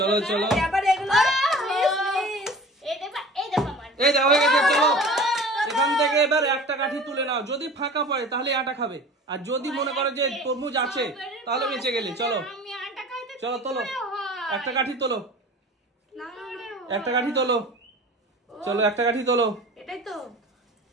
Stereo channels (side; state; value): both; normal; correlation 0.41